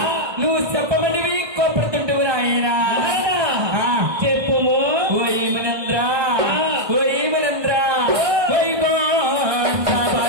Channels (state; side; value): late; left; 1.6 ms